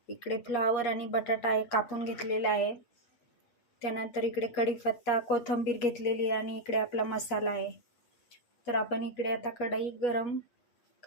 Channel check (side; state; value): right; late; 8.4 ms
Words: इकडे फ्लावर आणि बटाटा आहे कापून घेतलेला आहे, त्यानंतर इकडे कढीपत्ता, कोथिंबीर घेतलेली आणि इकडे आपला मसाला आहे. तर आपण इकडे आता कढई गरम